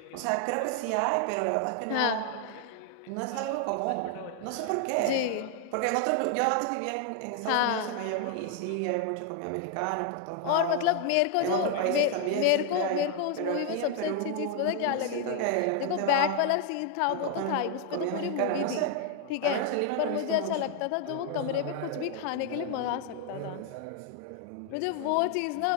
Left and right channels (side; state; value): both; different; correlation 0.00